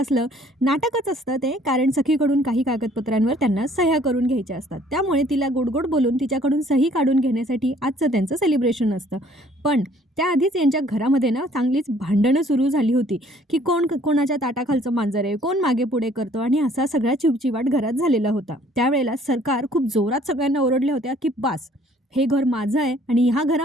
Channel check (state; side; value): normal; both; correlation 0.58